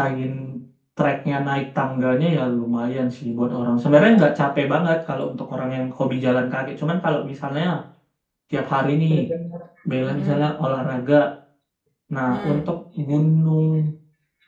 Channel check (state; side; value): identical; both; correlation 1.00